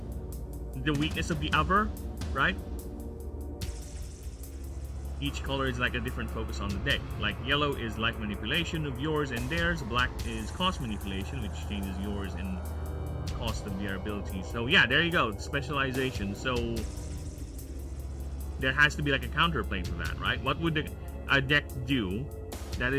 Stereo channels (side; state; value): both; identical; correlation 1.00